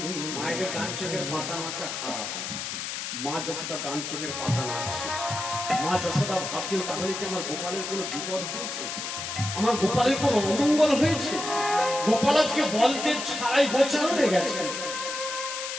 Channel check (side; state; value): left; noise; hiss, 5 dB below the sound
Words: মায়েদের ডান চোখের পাতা নাচা খারাপ মা যশোদা ডান চোখের পাতা নাচছে মা যশোদা ভাবছেন তাহলে কি আমার গোপালের কোনো বিপদ হয়েছে আমার গোপালের কোনো অমঙ্গল হয়েছে গোপাল আজকে বলদেব ছাড়াই গোচারণ হয়ে গেছে